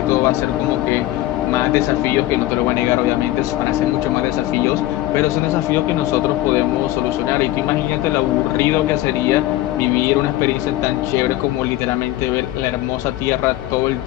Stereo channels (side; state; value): right; quieter; 15.7 dB